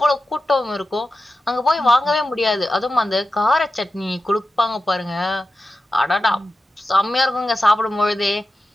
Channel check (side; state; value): both; normal; correlation 0.92